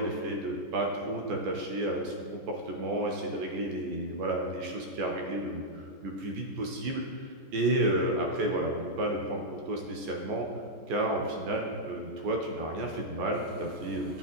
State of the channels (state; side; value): late; left; 14 ms